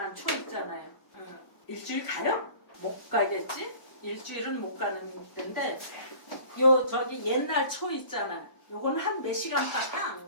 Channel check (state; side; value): late; right; 1.0 ms